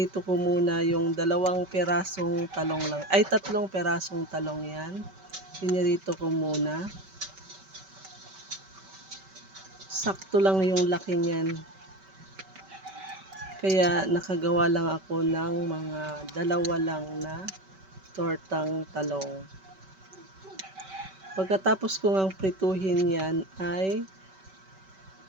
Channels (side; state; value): left; late; 5.2 ms